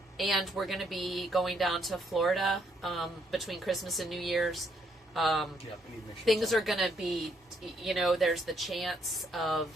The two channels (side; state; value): both; normal; correlation 0.72